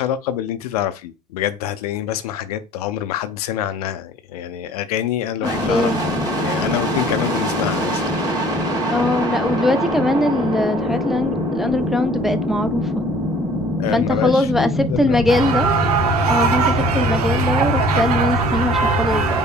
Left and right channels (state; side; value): normal; both; correlation 0.53